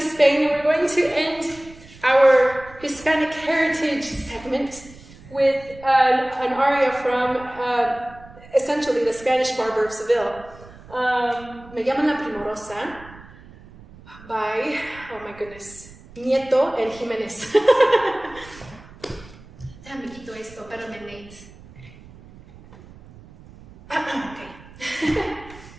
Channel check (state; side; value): noise; right; rumble, 21 dB below the sound